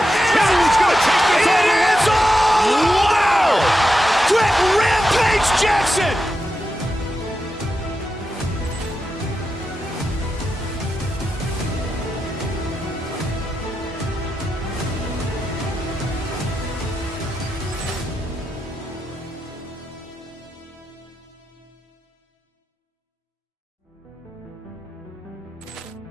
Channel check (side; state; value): both; normal; correlation 0.89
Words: Hill's going to take this all the way. Wow! Quick Rampage Jackson.